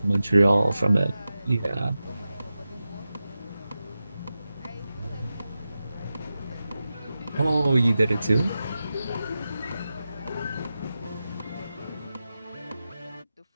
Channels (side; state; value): both; inverted; correlation -0.92